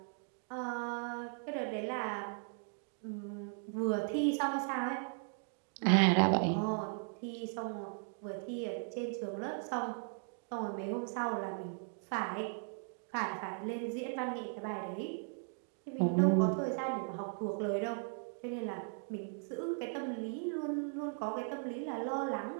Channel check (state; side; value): silent; left; 53 dB below the other